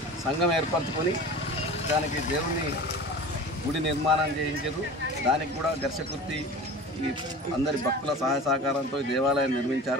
సంఘం ఏర్పరచుకొని దానికి దేవుని గుడి నిర్మాణం చేయించారు. దానికి కూడా ఘర్షకుర్తి ఈ అందరి భక్తుల సహాయ సహకారంతో ఈ దేవాలయం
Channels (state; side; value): normal; both; correlation 0.36